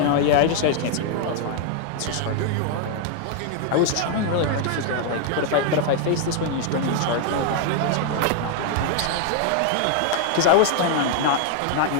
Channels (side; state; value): both; different; correlation 0.00